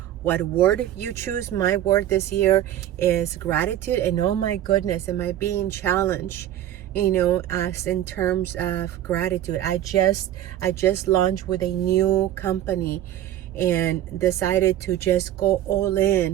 what word you choose. My word this year is gratitude. And oh my goodness, am I being challenged, as in terms of gratitude. I just launched with a new company and decided to just go all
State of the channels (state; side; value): quieter; left; 12.3 dB